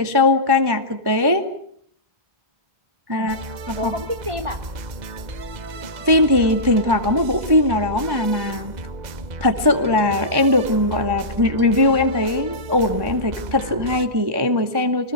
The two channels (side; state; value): left; late; 1.1 ms